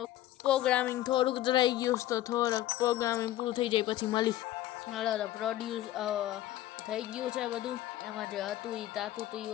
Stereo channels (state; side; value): quieter; right; 14.3 dB